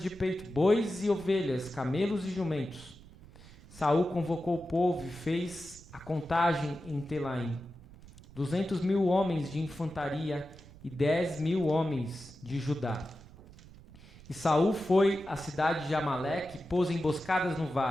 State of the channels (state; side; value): noise; right; rumble, 20 dB below the sound